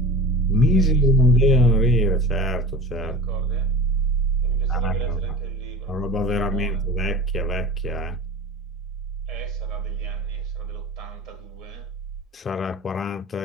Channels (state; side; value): normal; both; correlation 0.37